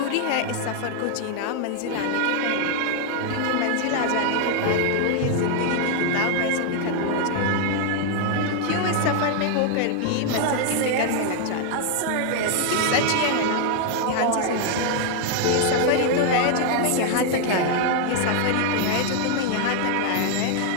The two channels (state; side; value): different; both; correlation 0.00